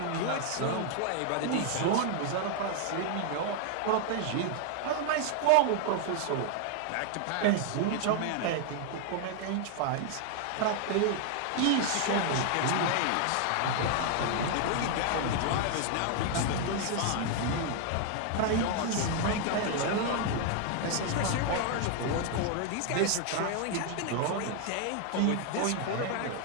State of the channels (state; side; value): different; both; correlation 0.00